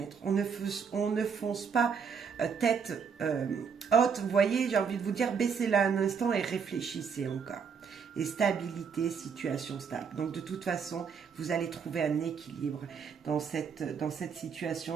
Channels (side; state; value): left; quieter; 6.3 dB